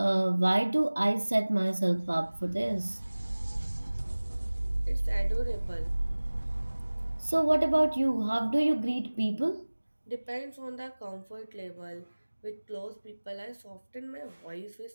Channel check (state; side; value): inverted; both; correlation -1.00